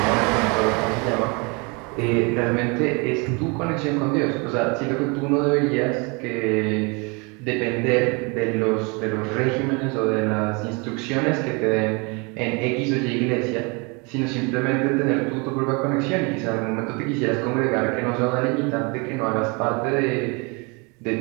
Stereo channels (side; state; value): left; quieter; 30.2 dB